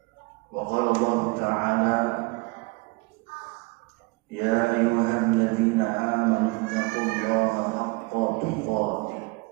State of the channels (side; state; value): left; quieter; 27.3 dB